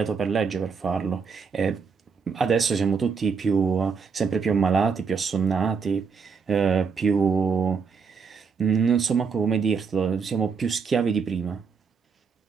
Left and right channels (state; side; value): quieter; left; 5.6 dB